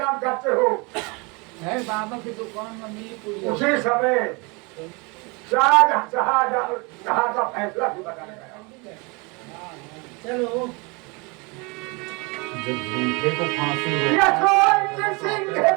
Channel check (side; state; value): left; quieter; 28.9 dB